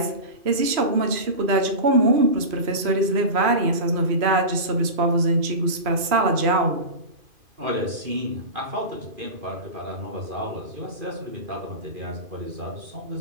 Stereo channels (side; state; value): left; late; 2.5 ms